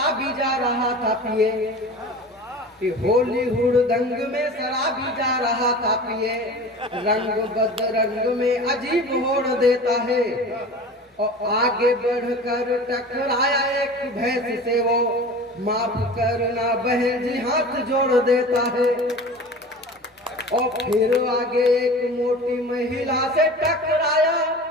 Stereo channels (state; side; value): normal; both; correlation 0.37